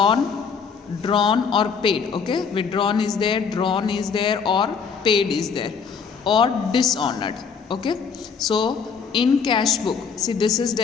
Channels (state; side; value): quieter; right; 6.0 dB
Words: drawn or paid. Okay, withdrawn is there, drawn is there, or paid is there, or dishonored. Okay, so in cash book, see this is